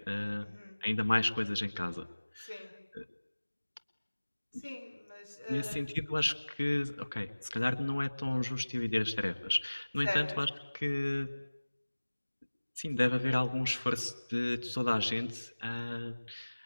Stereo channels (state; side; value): inverted; both; correlation -1.00